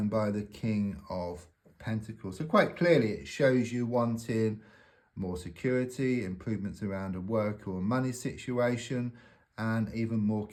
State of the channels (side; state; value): both; identical; correlation 1.00